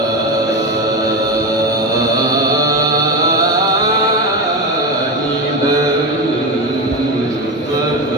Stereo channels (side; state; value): both; normal; correlation 0.18